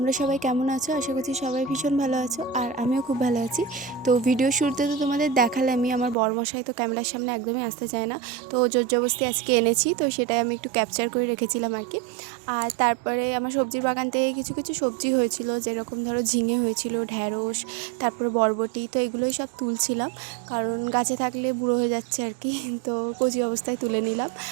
সবাই কেমন আছো? আশা করছি সবাই ভীষণ ভালো আছো, আর আমিও খুব ভালো আছি। তো ভিডিও শুরুতে তো তোমাদের দেখালামই, আমার বরমশাই তো ক্যামেরার সামনে একদমই আসতে চায় না, তো জোর জবরদস্তি আজকে এনেছি, তো সেটাই আমি একটু ক্যাপচার করে রেখেছিলাম আর কি। আর তারপরে আমার সবজির বাগান থেকে কিছু কিছু সবজি হয়েছিল, যেরকম ধরো ঝিঙে হয়েছিল, ঢ্যাঁড়স, তারপরে বরবটি, তো এগুলোই সব তুলছিলাম, কারণ গাছে থাকলে বুড়ো হয়ে যাচ্ছে আর কি, তো কচি অবস্থায় তুলে নিলাম।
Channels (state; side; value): drops out; left; at 6.2 s